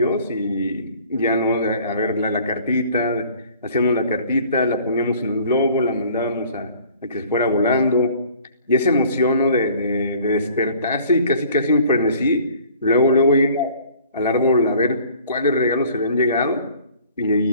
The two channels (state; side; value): inverted; both; correlation -0.52